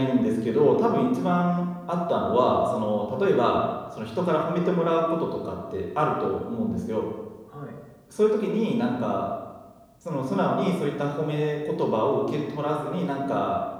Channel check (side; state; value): both; identical; correlation 1.00